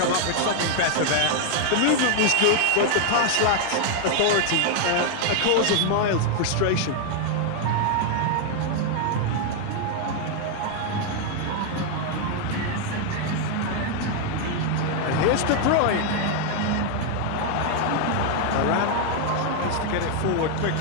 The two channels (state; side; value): different; both; correlation 0.01